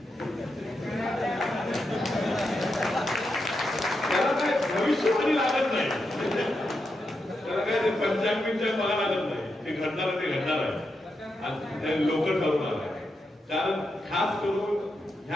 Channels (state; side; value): normal; both; correlation 0.85